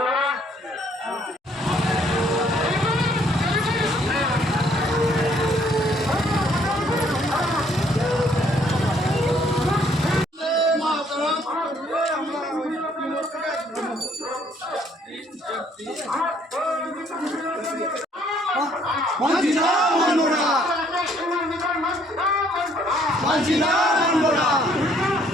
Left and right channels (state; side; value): normal; both; correlation 0.64